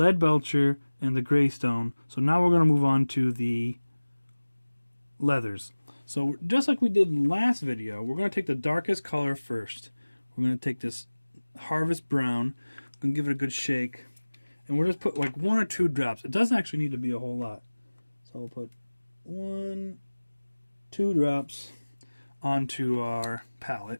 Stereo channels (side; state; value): both; inverted; correlation -1.00